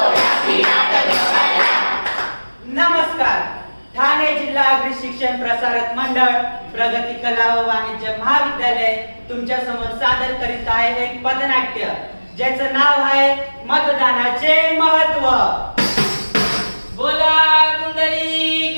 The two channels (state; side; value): inverted; both; correlation -1.00